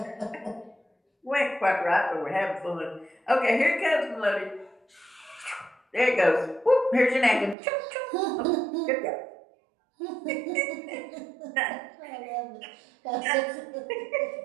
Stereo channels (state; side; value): drops out; left; at 7.6 s